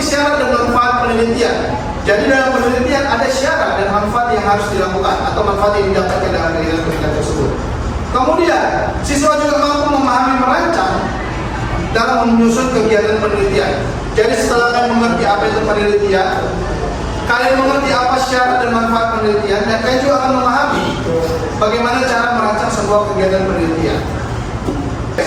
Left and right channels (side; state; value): both; identical; correlation 1.00